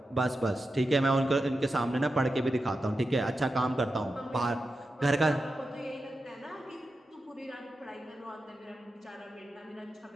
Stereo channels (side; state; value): both; normal; correlation 0.90